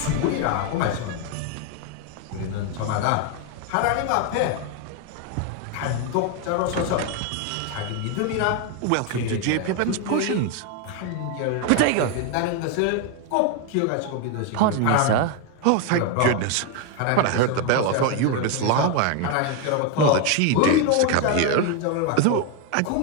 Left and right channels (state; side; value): different; both; correlation 0.01